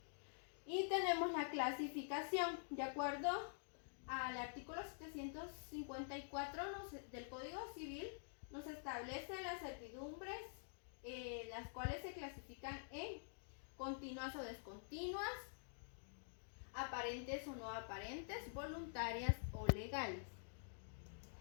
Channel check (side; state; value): right; silent; digital silence